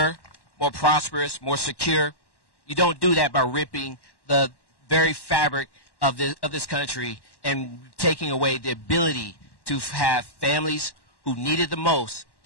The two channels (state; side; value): late; right; 1.1 ms